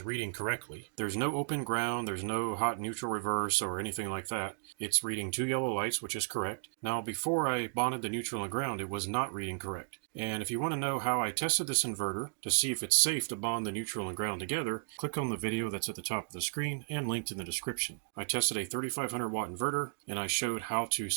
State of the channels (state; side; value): silent; left; digital silence